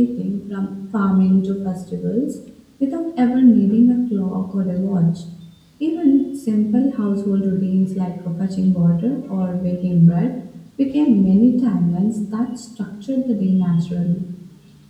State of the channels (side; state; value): both; identical; correlation 1.00